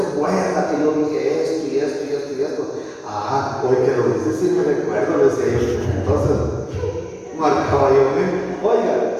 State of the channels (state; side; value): identical; both; correlation 1.00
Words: que yo dije esto y esto y esto y esto. Hoy que lo dice, sí me recuerdo, le decía yo. Entonces, marcaba yo, oiga,